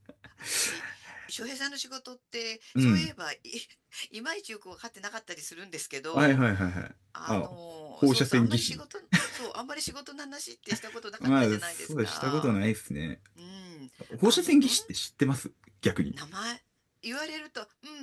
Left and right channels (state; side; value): identical; both; correlation 1.00